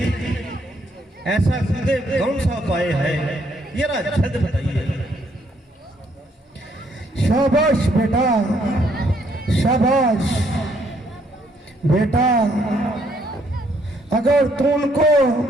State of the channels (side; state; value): both; normal; correlation 0.69